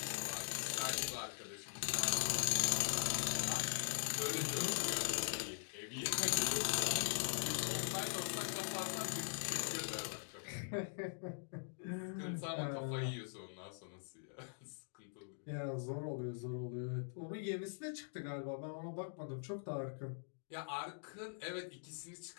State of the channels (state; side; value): silent; right; digital silence